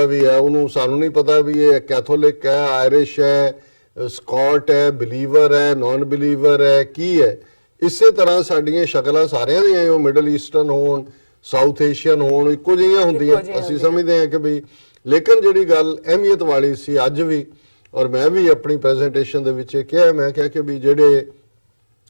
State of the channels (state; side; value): inverted; both; correlation -1.00